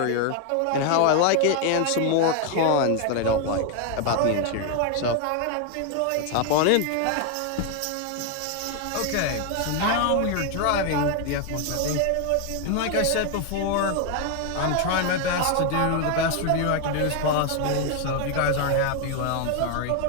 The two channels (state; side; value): different; both; correlation 0.01